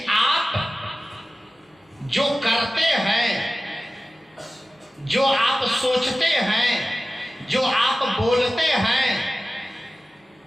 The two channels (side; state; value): both; normal; correlation 0.95